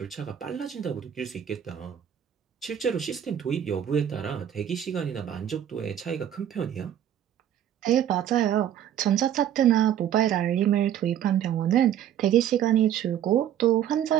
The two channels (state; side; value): quieter; left; 10.3 dB